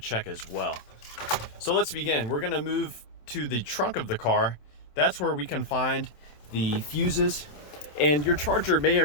as well. So let's begin. We're gonna move to the trunk of the car. That's where we can find the fuses, and your Charger may or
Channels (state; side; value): late; right; 27 ms